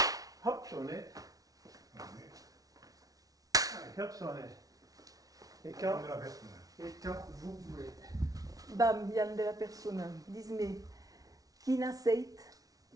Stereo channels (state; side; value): late; left; 0.18 ms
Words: Hop, sonnet. Allez, Allez, hop, sonnet. Et quand, on est la bête, là. et quand vous voulez. Bam, Yann de la persona. Dis-me, quin aceit